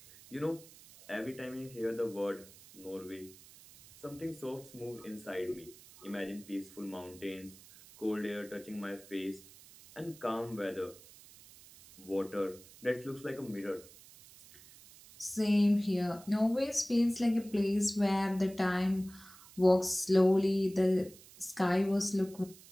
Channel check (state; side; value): noise; right; hiss, 21 dB below the sound